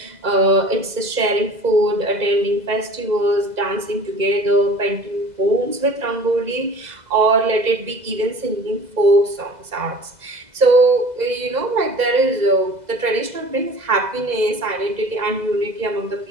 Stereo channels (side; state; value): left; late; 2.0 ms